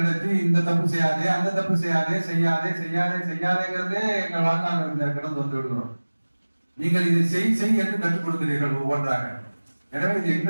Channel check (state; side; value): inverted; both; correlation -1.00